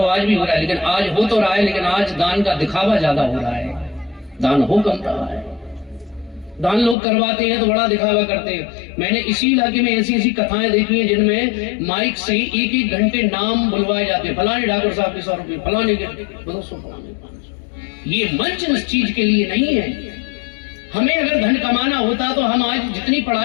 आज भी हो रहा है, लेकिन आज हो तो रहा है, लेकिन आज दान का दिखावा ज्यादा हो रहा है, दान हो कम रहा है। दान लोग करवाते हैं तो बड़ा दिखावा करते हैं। मैंने इसी इलाके में ऐसी ऐसी कथाएं देखी हैं जिनमें माइक से एक एक घंटे नाम बुलवाए जाते हैं, फलाने ठाकुर साहब के 100 रुपये, फलाने के 200, फलाने 500। ये मंच इस चीज के लिए नहीं है। हमें अगर धन कमाना होता तो हम आज जितनी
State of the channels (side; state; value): right; drops out; at 7.0 s